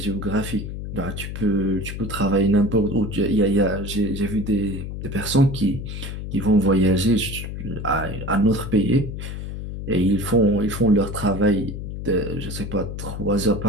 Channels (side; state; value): left; noise; hum, 7 dB below the sound